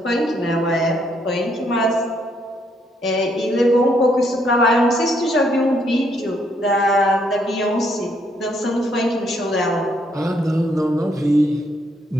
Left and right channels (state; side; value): normal; both; correlation 0.72